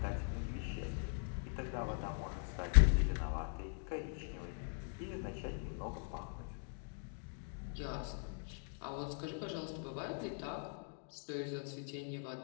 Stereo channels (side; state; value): right; silent; 50 dB below the other